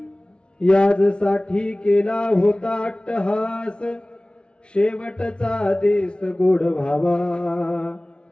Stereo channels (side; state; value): right; late; 0.057 ms